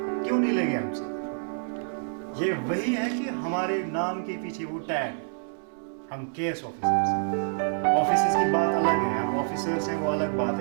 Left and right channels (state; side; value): silent; left; digital silence